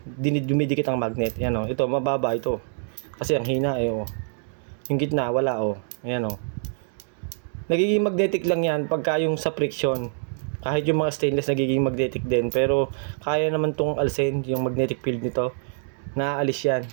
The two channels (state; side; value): silent; left; digital silence